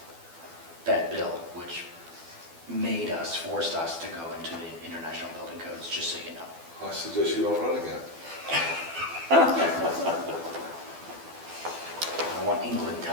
that bill, which forced us to go into the international building codes, just so you know. I suggest you don't run again. I want England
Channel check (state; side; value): late; left; 12 ms